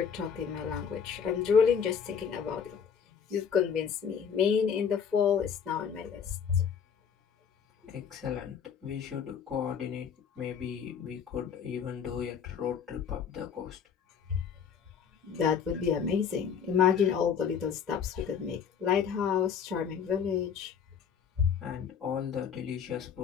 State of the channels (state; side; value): quieter; right; 7.2 dB